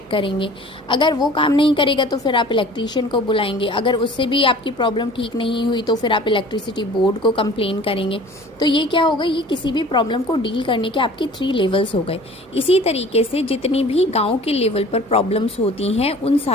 करेंगे। अगर वो काम नहीं करेगा तो फिर आप इलेक्ट्रीशियन को बुलाएंगे। अगर उससे भी आपकी प्रॉब्लम ठीक नहीं हुई तो फिर आप इलेक्ट्रिसिटी बोर्ड को कंप्लेन करेंगे। तो ये क्या होगा, ये किसी भी प्रॉब्लम को डील करने के आपके 3 लेवल्स हो गए। इसी तरीके से जितनी भी गाँव के लेवल पर प्रॉब्लम्स होती हैं उन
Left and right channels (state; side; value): normal; both; correlation 0.45